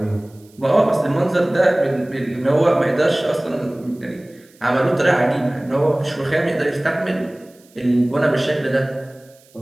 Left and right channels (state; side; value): noise; right; hiss, 30 dB below the sound